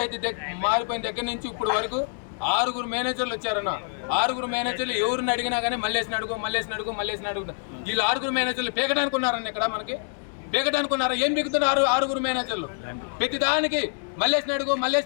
మారిపోయిన దగ్గర నుంచి ఇప్పుడు వరకు 6 మేనేజర్లు వచ్చారన్న. 6 మేనేజర్లు ఎవరిని అడిగినా కానీ మల్లేసిన అడుగు. వీళ్ళు 6 మేనేజర్లు పీకడానికి ఉన్నారన్న. ఇక్కడ మనకి పీకడానికి ఉన్నారా? ఏం పీకుతున్నారు 6 మేనేజర్లు? ప్రతి దానికి మల్లేసిన అడుగు.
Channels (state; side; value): silent; right; digital silence